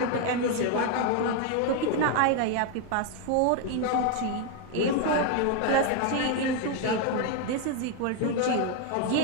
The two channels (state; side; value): different; both; correlation 0.01